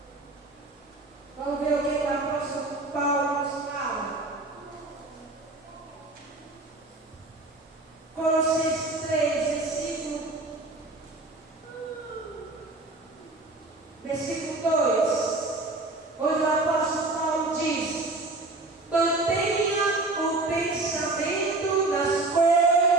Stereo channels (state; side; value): quieter; left; 3.1 dB